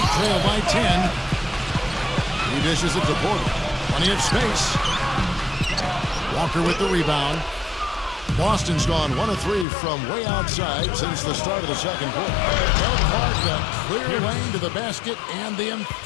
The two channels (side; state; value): right; drops out; at 9.7 s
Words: trail by 10. He dishes it to Porter. Plenty of space. Walker with the rebound. Boston's gone 1 of 3 from way outside since the start of the second quarter. They'll mark the clear lane to the basket and the